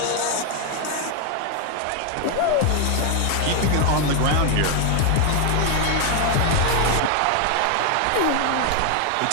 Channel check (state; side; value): different; both; correlation 0.01